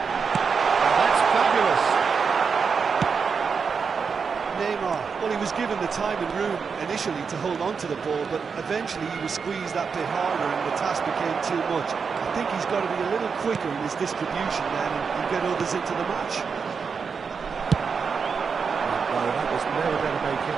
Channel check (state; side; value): quieter; left; 5.7 dB